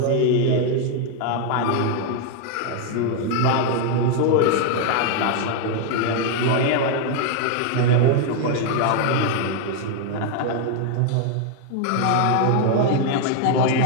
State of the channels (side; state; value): both; different; correlation 0.01